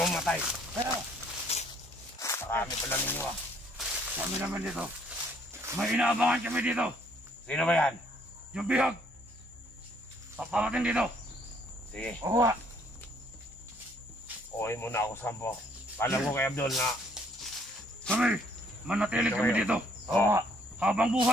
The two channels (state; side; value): normal; both; correlation 0.64